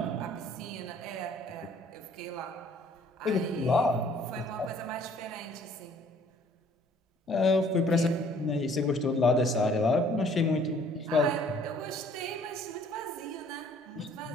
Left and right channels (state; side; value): normal; both; correlation 0.58